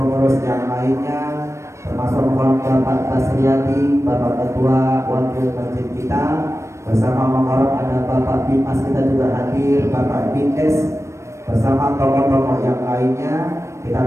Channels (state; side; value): late; left; 0.14 ms